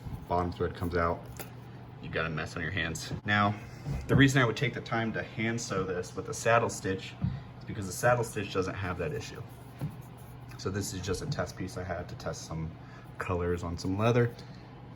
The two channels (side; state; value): both; identical; correlation 1.00